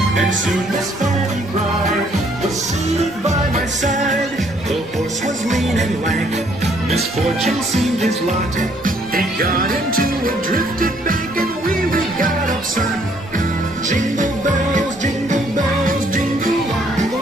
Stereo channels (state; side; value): normal; both; correlation 0.66